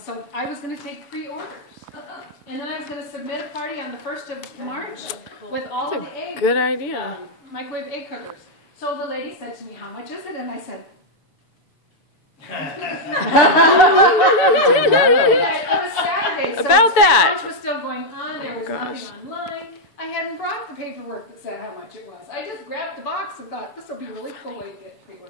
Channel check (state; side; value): late; right; 6.9 ms